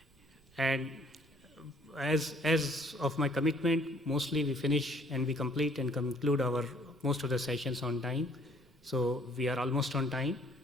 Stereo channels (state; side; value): noise; right; rumble, 30 dB below the sound